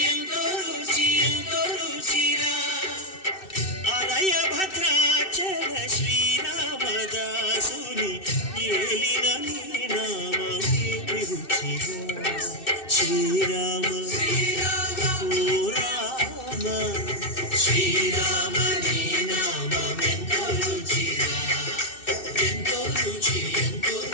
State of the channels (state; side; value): late; right; 2.6 ms